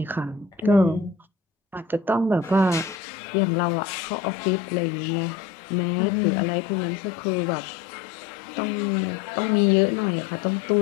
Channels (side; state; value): right; drops out; at 3.0 s